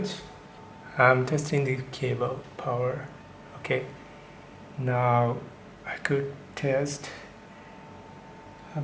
I'm testing the cable power. Okay, now I could test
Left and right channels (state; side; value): identical; both; correlation 1.00